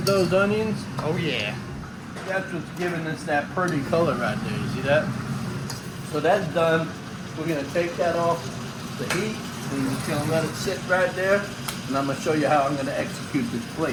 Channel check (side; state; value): both; identical; correlation 1.00